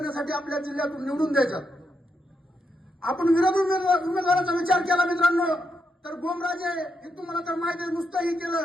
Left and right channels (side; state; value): both; normal; correlation 0.81